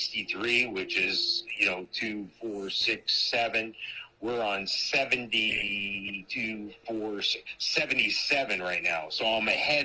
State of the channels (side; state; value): both; identical; correlation 1.00